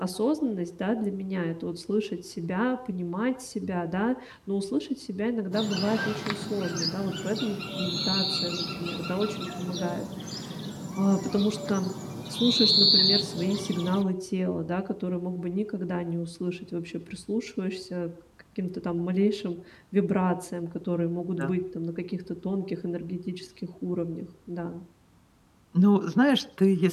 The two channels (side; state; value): both; identical; correlation 1.00